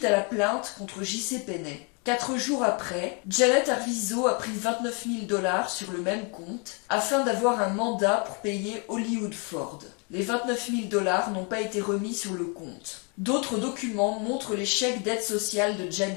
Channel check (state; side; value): quieter; right; 34.6 dB